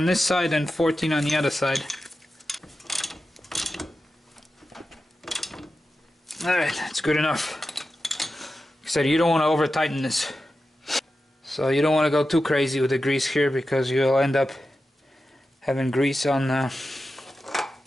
this side and 14 on the other side. Alright, that's good enough. Like I said, you don't want to over tighten this. So you don't want to go too crazy with the grease here, because you'll end up having grease on the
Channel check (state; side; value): normal; both; correlation 0.92